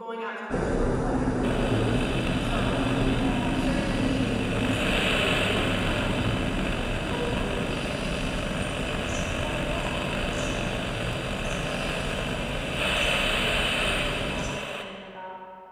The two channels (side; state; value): both; identical; correlation 1.00